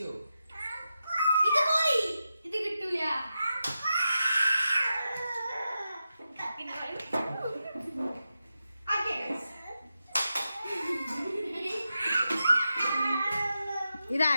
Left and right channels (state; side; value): inverted; both; correlation -0.89